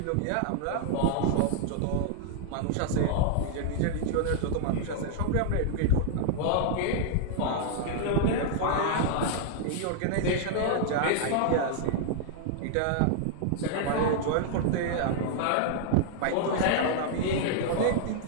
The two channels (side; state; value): both; different; correlation -0.01